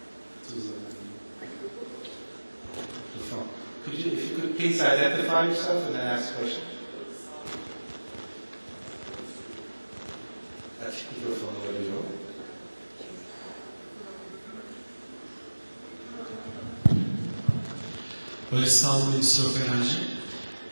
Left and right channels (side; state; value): both; inverted; correlation -1.00